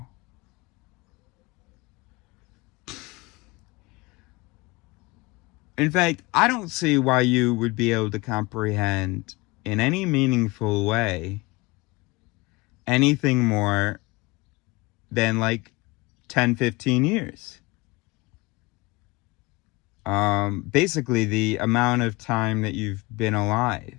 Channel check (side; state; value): right; quieter; 23.6 dB